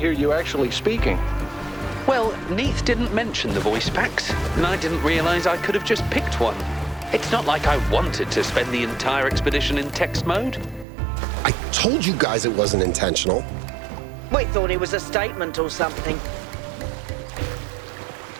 hear you actually speaking. Well, Neith didn't mention the voice packs, and I didn't realize I could have just picked one. It's not like I wanted to spend the entire expedition in text mode. I told you guys it wasn't intentional. We thought it was a statement or something.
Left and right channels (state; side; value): drops out; left; at 10.9 s